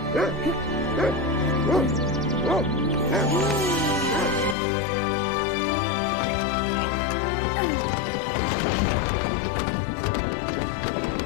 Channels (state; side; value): drops out; right; at 4.5 s